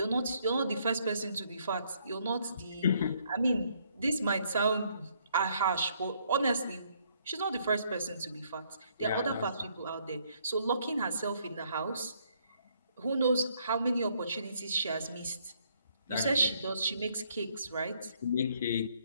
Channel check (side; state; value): both; inverted; correlation -0.68